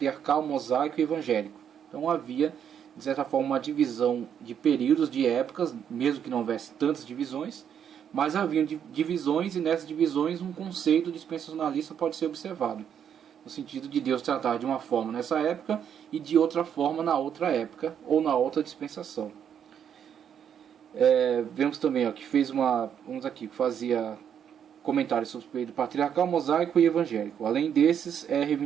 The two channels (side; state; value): left; quieter; 8.5 dB